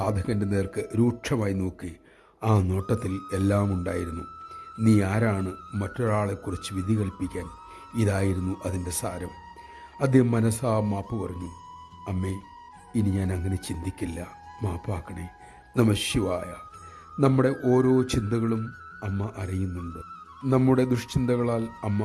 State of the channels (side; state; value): both; identical; correlation 1.00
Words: നേർക്ക് രൂക്ഷമായി നോക്കി. ആ നോട്ടത്തിൽ എല്ലാം ഉണ്ടായിരുന്നു. നീ ആരാണ് മറ്റൊരാളെക്കുറിച്ച് വിധി കൽപ്പിക്കാൻ? ഇതായിരുന്നു അതിൻ്റെ സാരം. അദ്ദേഹം മനസ്സാ മാപ്പ് പറഞ്ഞു. അമ്മേ, ഇനി ഞാൻ അങ്ങനെ ചിന്തിക്കില്ല, മാപ്പാക്കണേ. നമഃശിവായ. നമ്മുടെ ഓരോ ചിന്തകളും അമ്മ അറിയുന്നുണ്ട്. നമ്മുടെ ദുഷ്ചിന്തകളാൽ